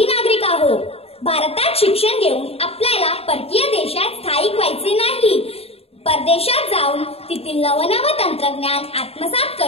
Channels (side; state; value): right; late; 0.29 ms